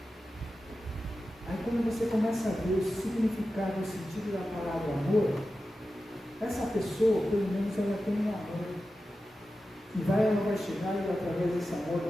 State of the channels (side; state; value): both; normal; correlation 0.93